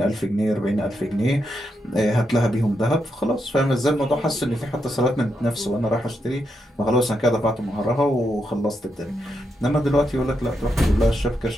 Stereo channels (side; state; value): both; normal; correlation 0.83